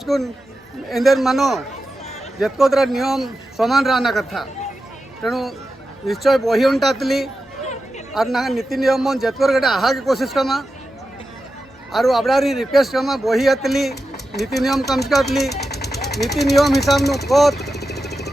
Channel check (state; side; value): normal; both; correlation 0.91